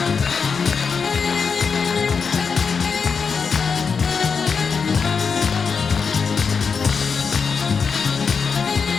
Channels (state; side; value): quieter; right; 5.6 dB